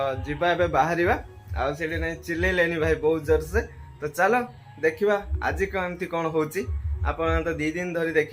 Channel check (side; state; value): both; identical; correlation 1.00